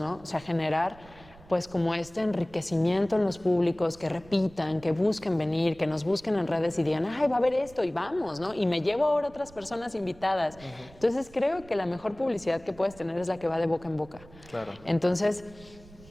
O sea, generar pues como este enriquecimiento en los públicos, que repitan, que busquen venir, que nos busquen en redes y digan, va a haber esto y vamos, ¿no? Y me llevo ahora otras personas invitadas. Entonces, creo que la mejor publicidad que puedes tener es la que va de boca en boca. Claro. Entonces,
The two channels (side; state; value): right; noise; rumble, 22 dB below the sound